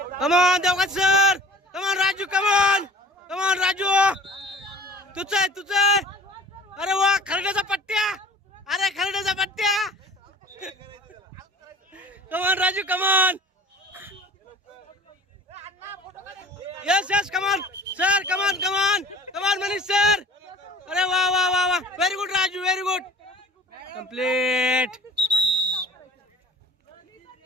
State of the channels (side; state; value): both; normal; correlation 0.45